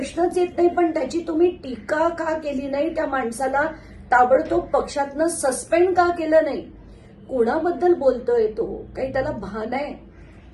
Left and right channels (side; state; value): both; identical; correlation 1.00